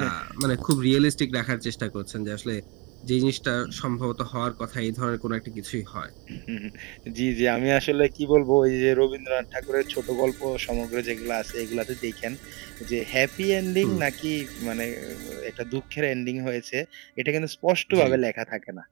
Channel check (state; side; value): quieter; left; 27.3 dB